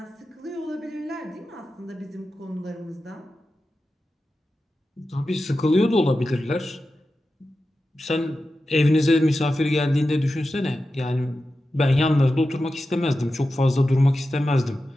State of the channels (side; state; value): both; normal; correlation 0.92